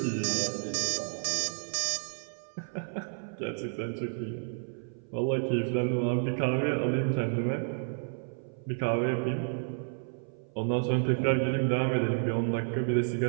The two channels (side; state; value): left; silent; 55 dB below the other